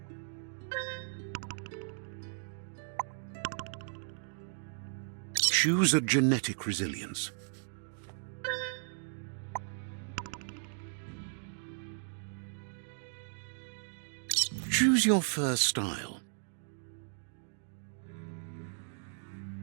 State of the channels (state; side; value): silent; left; digital silence